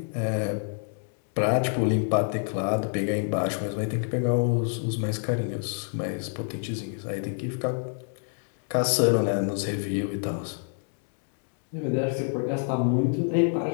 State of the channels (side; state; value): right; silent; 60 dB below the other